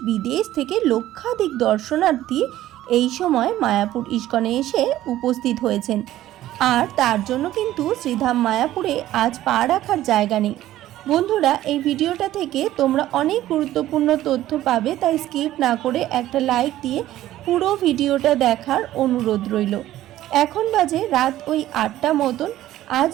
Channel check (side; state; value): left; quieter; 14.1 dB